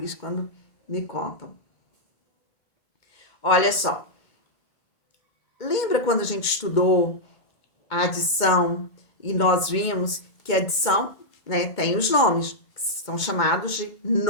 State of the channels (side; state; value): right; late; 2.1 ms